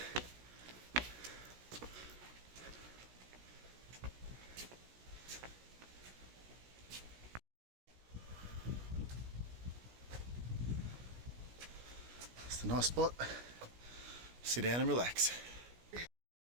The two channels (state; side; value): late; left; 17 ms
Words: It's a nice spot. Sit down and relax.